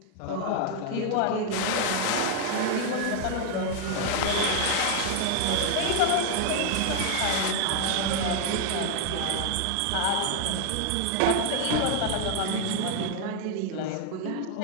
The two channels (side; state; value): both; different; correlation 0.00